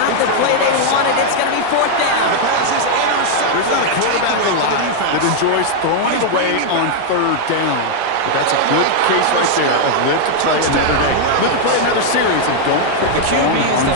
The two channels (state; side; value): different; both; correlation 0.00